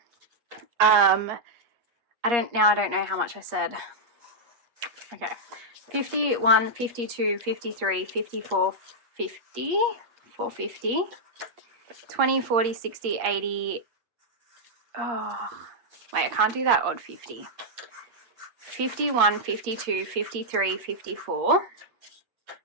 I don't know how much I said. Okay. 51, 52, 53, 54, 50, 450. 20, 40, 60, 80. Oh, wait, I can't do that odd 50. 51, 52, 53, 54.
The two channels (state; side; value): late; left; 8.5 ms